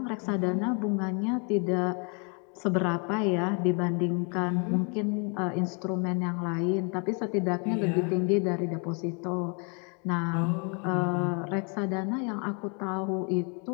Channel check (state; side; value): quieter; right; 35.9 dB